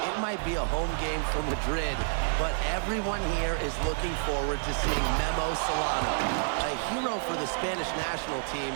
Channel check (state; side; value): silent; left; 58 dB below the other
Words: might be a home game for Madrid, but everyone here is looking forward to seeing Memo Solano, a hero for the Spanish national